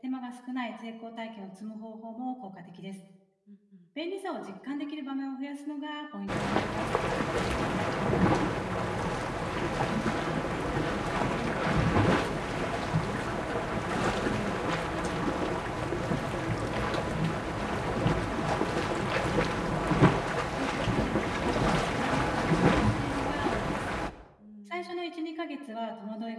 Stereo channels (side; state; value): both; identical; correlation 1.00